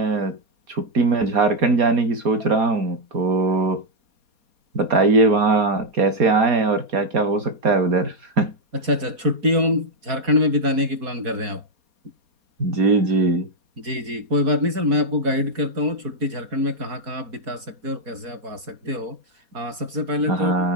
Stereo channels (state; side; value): late; left; 4.2 ms